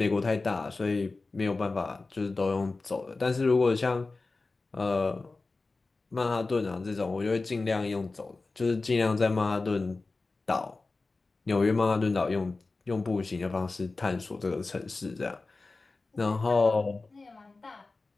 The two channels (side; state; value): right; quieter; 3.6 dB